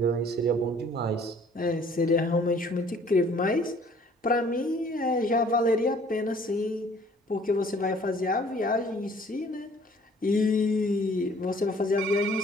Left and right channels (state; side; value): normal; both; correlation 0.56